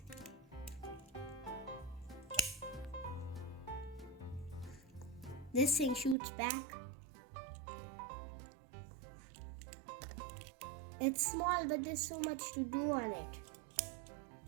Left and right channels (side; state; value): left; drops out; at 6.2 s